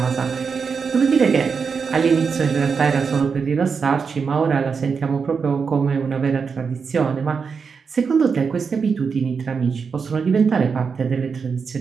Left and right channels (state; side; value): quieter; left; 5.7 dB